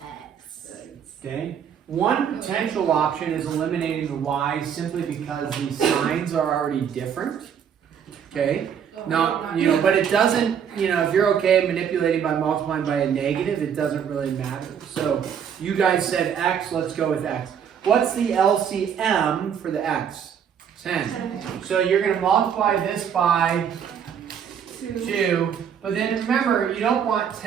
Okay. One potential option is eliminating the y simply because the signs are already different. Okay. No, but it doesn't, if you're okay manipulating by multiplying by a negative, it doesn't really matter. So you guys said x, let's go with x. What's the LCM for the x? 10. So you're going to multiply this by 2. But then remember, you don't want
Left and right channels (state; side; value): quieter; left; 8.0 dB